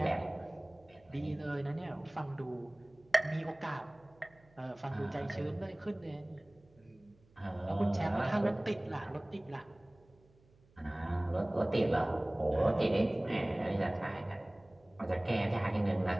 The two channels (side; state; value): right; noise; hum, 30 dB below the sound